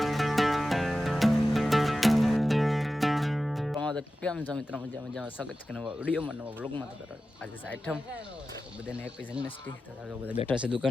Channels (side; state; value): both; normal; correlation 0.94